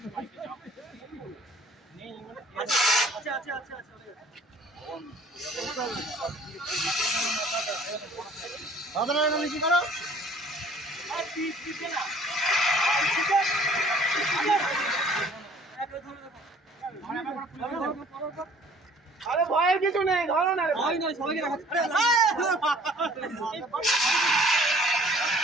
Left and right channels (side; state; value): both; normal; correlation 0.53